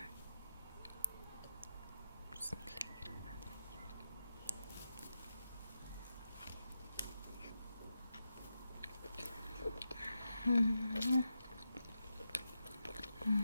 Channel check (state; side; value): inverted; both; correlation -0.89